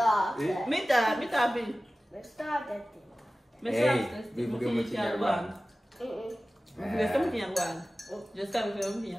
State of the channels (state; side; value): normal; both; correlation 0.96